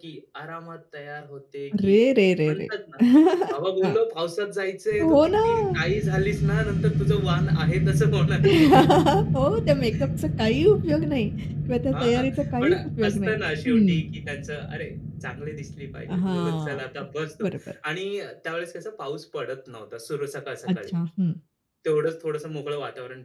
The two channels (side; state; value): both; identical; correlation 1.00